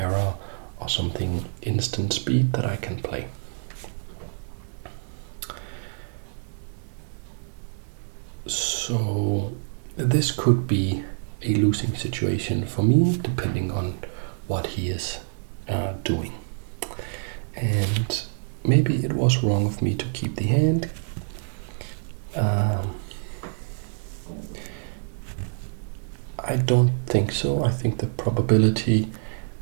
or something instant speed that I can play? So this could be a losing situation for me, depending on what he is doing. And maybe it was wrong of me to keep the hand. I don't think so. I think the probability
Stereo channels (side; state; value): left; silent; 61 dB below the other